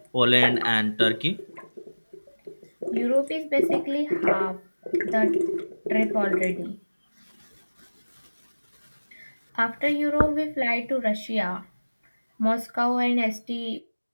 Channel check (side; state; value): both; inverted; correlation -1.00